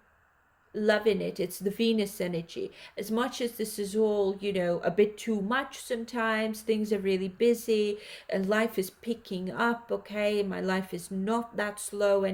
loving it. It's the Venus energy. As much as this is all, a bit too much sometimes, things are really busy and life is picking up, okay? My life is not that slow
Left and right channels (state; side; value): identical; both; correlation 1.00